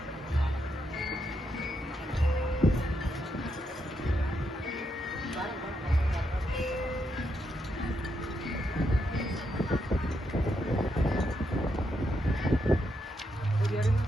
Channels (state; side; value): normal; both; correlation 0.81